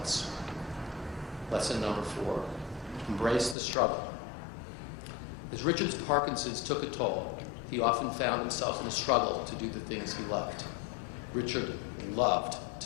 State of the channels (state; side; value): drops out; right; at 3.6 s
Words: Lesson number 4, embrace the struggle. As Richard's Parkinson's took a toll, he often found himself in a struggle to do the things he loved. Richard loved